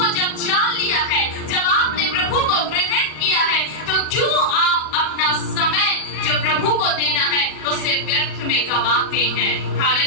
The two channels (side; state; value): right; late; 40 ms